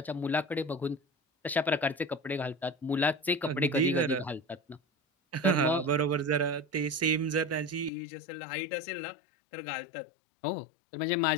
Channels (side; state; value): right; drops out; at 7.9 s